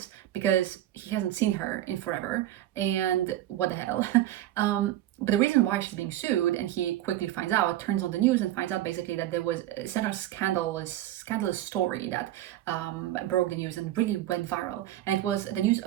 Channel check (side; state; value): left; quieter; 13.6 dB